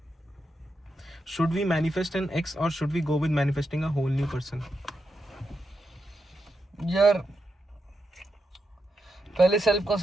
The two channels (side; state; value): both; normal; correlation 0.85